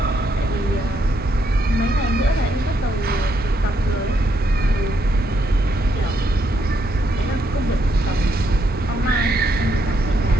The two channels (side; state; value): both; normal; correlation 0.76